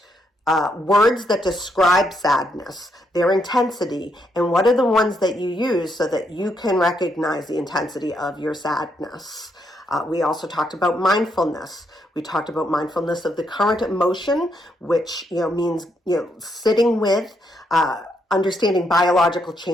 words that describe sadness, their intensity, and what are the ones that you use so that you can recognize the intensity of your sadness. We also talked about mindfulness. We talked about mindfulness of the current emotion, which means sitting with, understanding biological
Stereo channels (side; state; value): both; normal; correlation 0.77